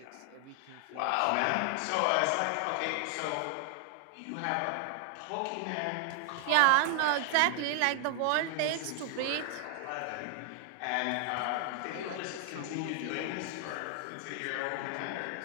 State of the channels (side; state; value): both; different; correlation 0.00